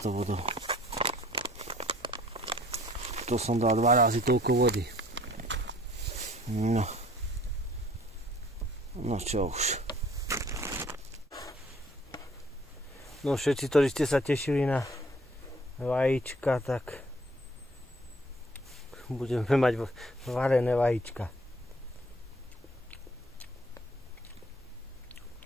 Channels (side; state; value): both; normal; correlation 0.56